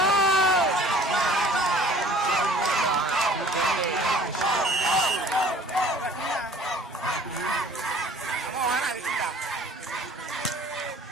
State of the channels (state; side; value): normal; both; correlation 0.51